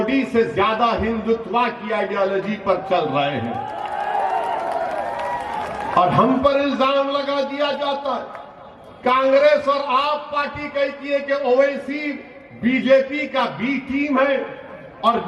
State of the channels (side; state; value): both; identical; correlation 1.00